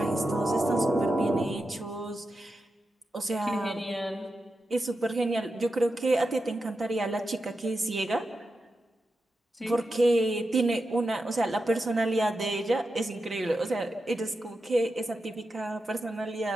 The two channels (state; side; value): normal; both; correlation 0.89